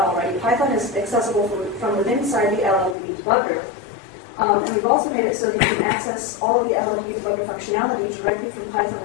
already, Python is accessible from within inside the LLDB debugger. And we've also made it so that you can access all of the LLDB debugger functionality directly from Python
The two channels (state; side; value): drops out; right; at 3.0 s